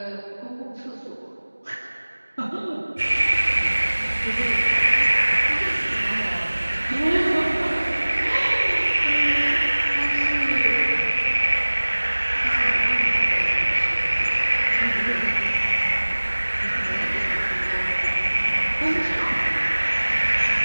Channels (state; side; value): inverted; both; correlation -1.00